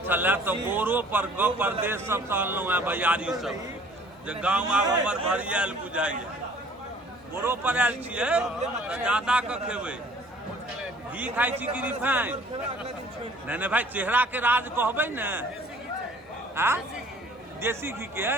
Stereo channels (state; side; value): normal; both; correlation 0.53